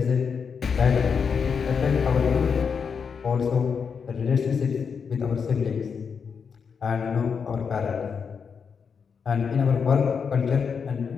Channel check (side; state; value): right; quieter; 6.2 dB